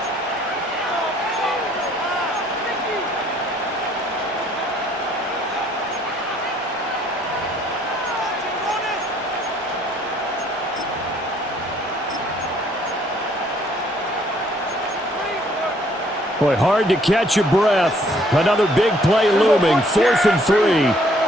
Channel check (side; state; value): both; normal; correlation 0.63